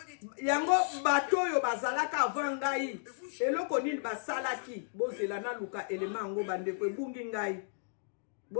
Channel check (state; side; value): silent; right; digital silence